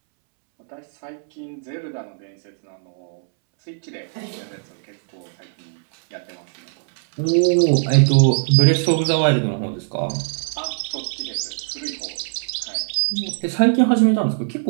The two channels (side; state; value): left; silent; 65 dB below the other